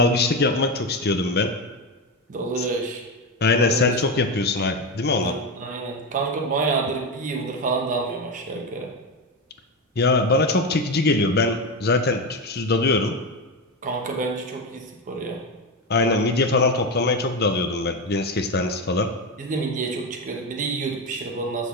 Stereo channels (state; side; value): normal; both; correlation 0.15